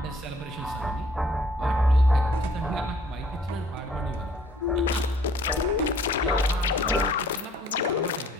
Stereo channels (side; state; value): both; normal; correlation 0.58